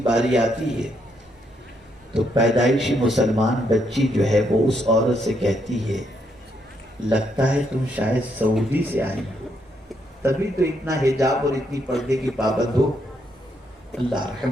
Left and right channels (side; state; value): both; normal; correlation 0.76